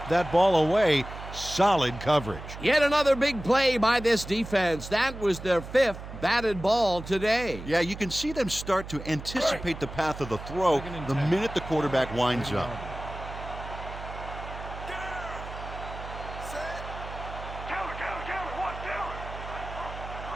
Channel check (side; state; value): right; noise; hum, 11 dB below the sound